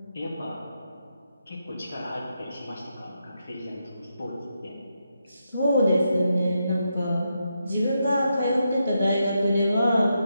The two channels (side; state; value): both; inverted; correlation -0.84